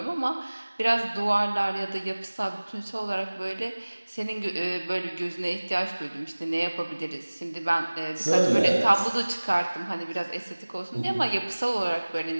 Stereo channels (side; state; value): both; inverted; correlation -1.00